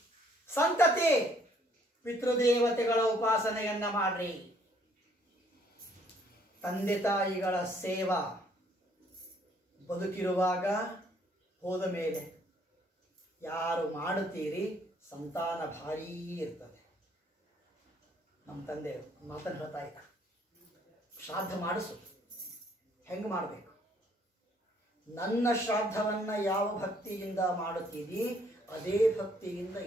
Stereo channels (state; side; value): normal; both; correlation 0.64